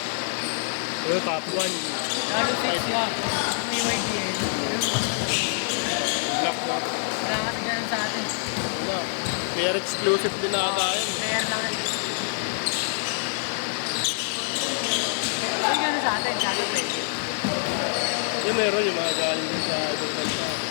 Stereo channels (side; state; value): right; silent; digital silence